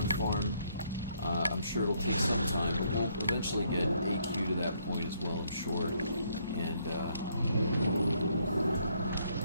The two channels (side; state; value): both; inverted; correlation -0.70